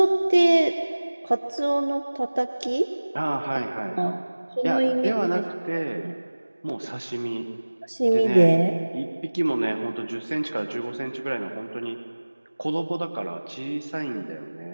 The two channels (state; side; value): inverted; both; correlation -1.00